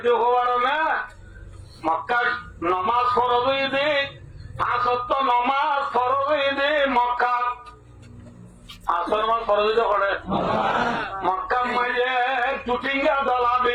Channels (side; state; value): both; identical; correlation 1.00